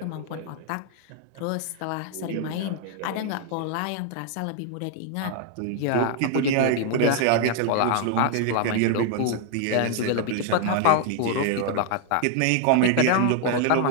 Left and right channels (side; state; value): both; different; correlation 0.00